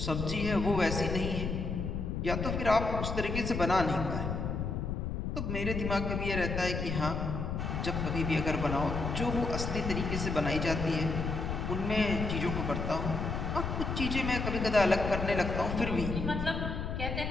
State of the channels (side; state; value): left; noise; rumble, 2 dB below the sound